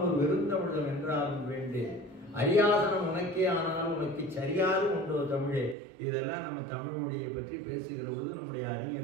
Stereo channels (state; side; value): drops out; left; at 5.8 s